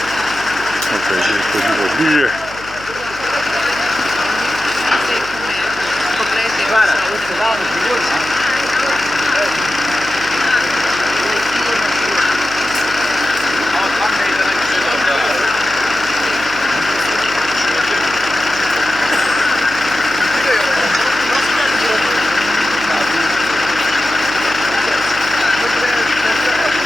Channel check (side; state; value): left; noise; hum, 18 dB below the sound